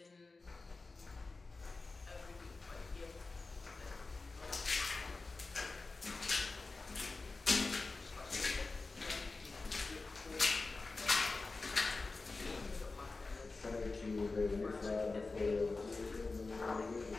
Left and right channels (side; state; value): right; quieter; 3.7 dB